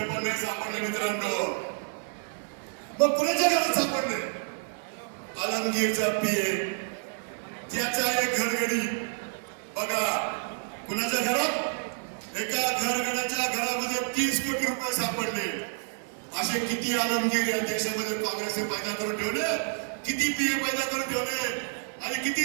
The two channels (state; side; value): silent; left; digital silence